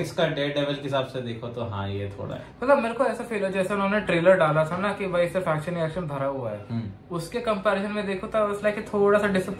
का डेयरडेविल के हिसाब से देखो तो हाँ ये थोड़ा है, मतलब मेरे को ऐसा फील है जैसे उन्होंने ट्रेलर डाला था ना कि भाई सिर्फ एक्शन एक्शन भरा हुआ है, उसके कंपैरिजन में देखो तो उस लाइक थोड़ा सा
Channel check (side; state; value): both; identical; correlation 1.00